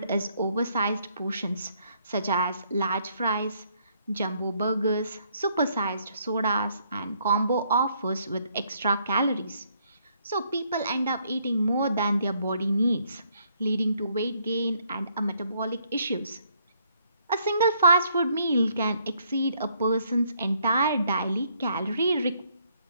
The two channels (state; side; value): inverted; both; correlation -0.70